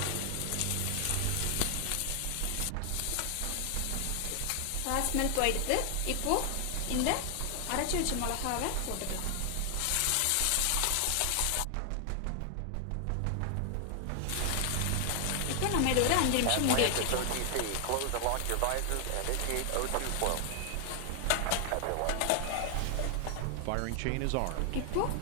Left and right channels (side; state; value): both; different; correlation 0.00